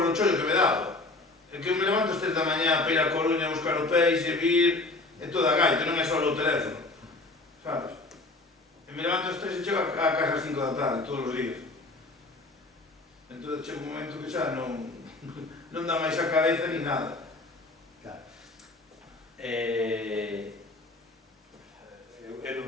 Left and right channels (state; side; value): quieter; right; 3.1 dB